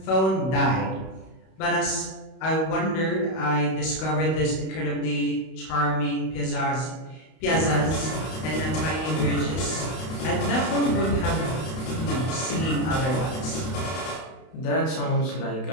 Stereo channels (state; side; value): late; right; 32 ms